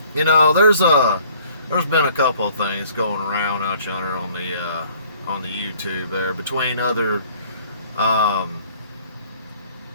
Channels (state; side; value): inverted; both; correlation -0.57